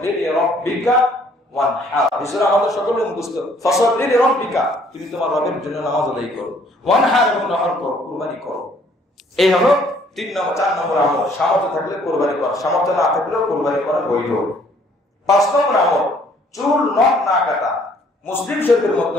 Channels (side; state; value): both; normal; correlation 0.61